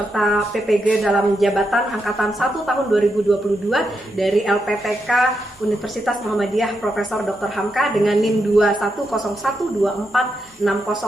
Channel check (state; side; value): normal; both; correlation 0.83